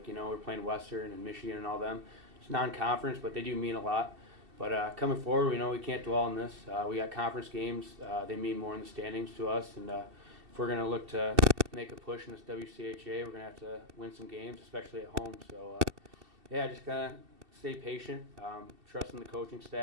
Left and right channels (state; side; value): late; left; 2.7 ms